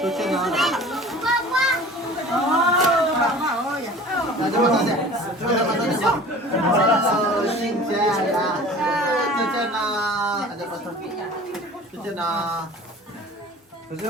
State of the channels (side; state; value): both; normal; correlation 0.42